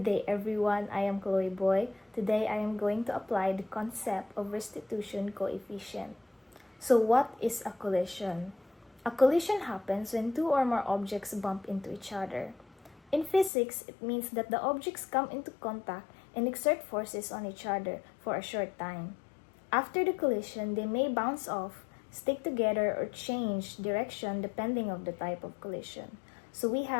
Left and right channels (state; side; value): drops out; right; at 13.5 s